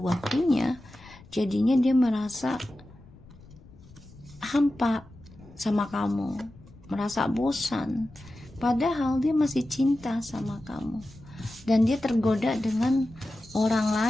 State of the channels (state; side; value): noise; left; rumble, 22 dB below the sound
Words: jadinya dia merasa hampa sama kamu, merasa bosan, padahal dia masih cinta sama kamu, dan dia tergoda dengan orang